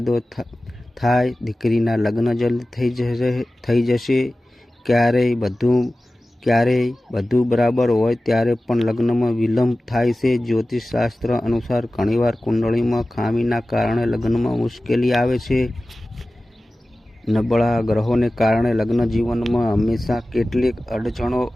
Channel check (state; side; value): normal; both; correlation 0.96